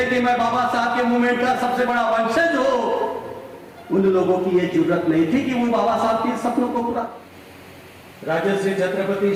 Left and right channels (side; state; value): both; identical; correlation 1.00